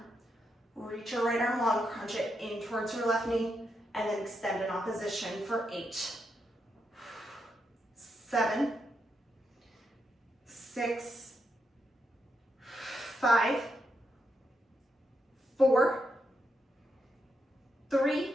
Reach your right arm long, crunch it in towards your left knee, and then extend in opposition for 8, 7, 6, 5, 4, 3,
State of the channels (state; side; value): normal; both; correlation 0.82